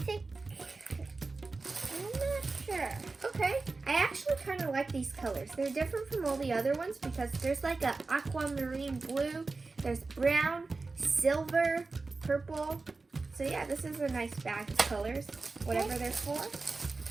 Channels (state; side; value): quieter; left; 3.8 dB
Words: I'm not sure. Okay. I actually kind of like these colors. They're different from all the other ones because there's like a aquamarine blue, there's brown, silver, purple. So yeah, this is a nice bag of colors, whatever they're for.